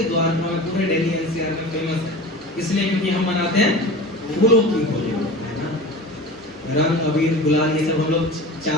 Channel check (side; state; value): both; normal; correlation 0.34